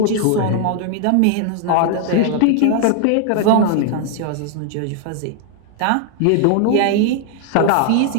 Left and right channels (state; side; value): different; both; correlation 0.00